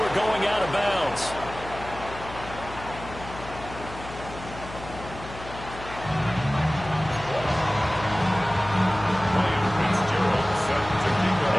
going out of bounds. Ryan Fitzgerald set to kick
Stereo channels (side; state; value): left; noise; hum, 13 dB below the sound